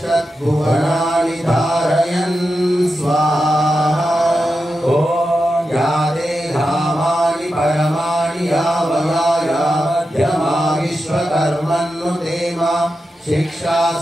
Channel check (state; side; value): normal; both; correlation 0.89